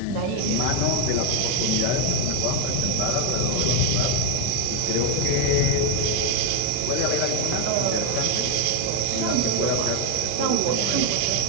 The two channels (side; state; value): both; different; correlation 0.01